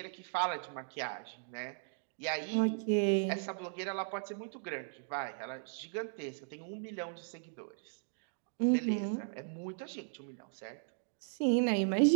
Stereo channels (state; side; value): silent; left; digital silence